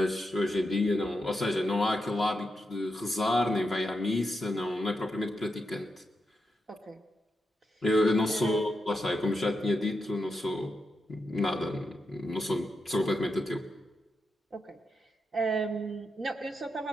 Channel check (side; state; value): both; normal; correlation 0.86